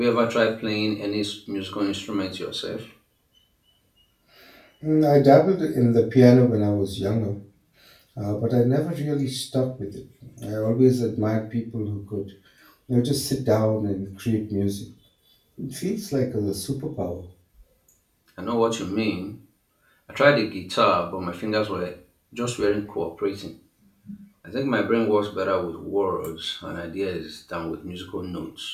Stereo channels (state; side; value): identical; both; correlation 1.00